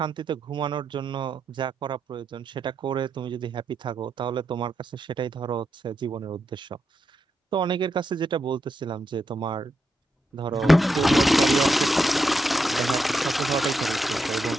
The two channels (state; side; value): normal; both; correlation 0.83